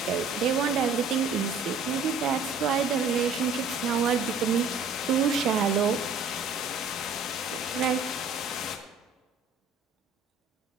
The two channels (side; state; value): left; quieter; 3.9 dB